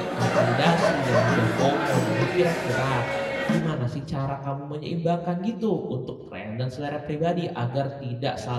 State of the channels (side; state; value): both; identical; correlation 1.00